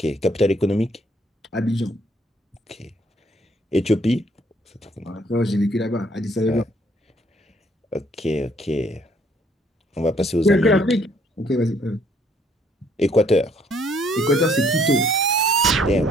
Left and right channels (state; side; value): normal; both; correlation 0.64